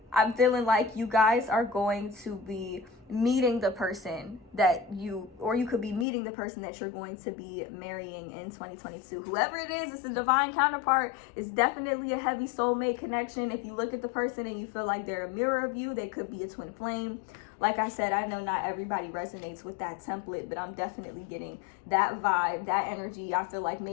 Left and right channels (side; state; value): right; drops out; at 6.1 s